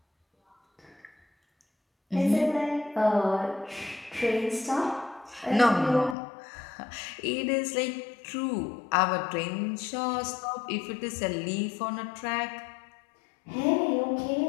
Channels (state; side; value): drops out; right; at 6.2 s